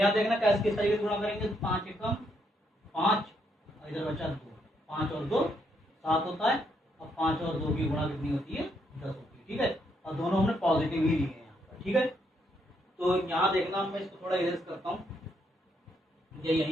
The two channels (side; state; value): both; normal; correlation 0.75